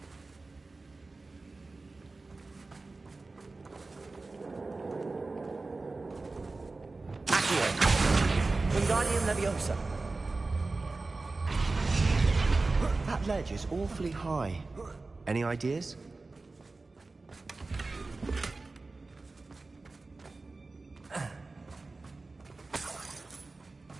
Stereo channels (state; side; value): quieter; left; 3.5 dB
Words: Wingardium Leviosa. That ledge is awfully high. Any ideas?